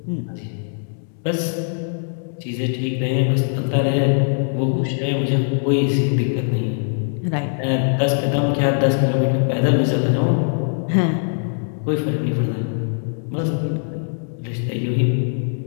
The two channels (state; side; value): silent; right; digital silence